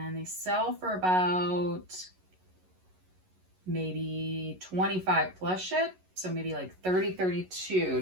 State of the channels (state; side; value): late; left; 11 ms